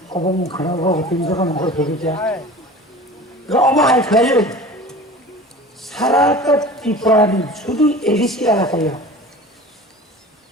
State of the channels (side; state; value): both; normal; correlation 0.39